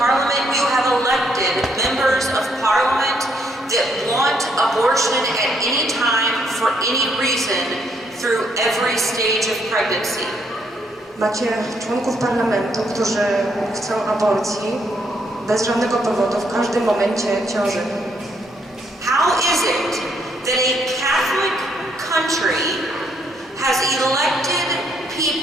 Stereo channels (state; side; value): normal; both; correlation 0.72